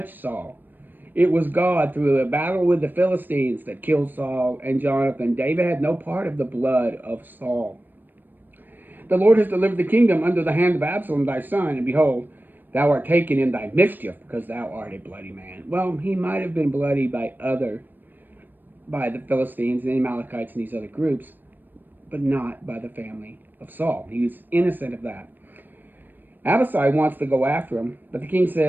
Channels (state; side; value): late; left; 0.091 ms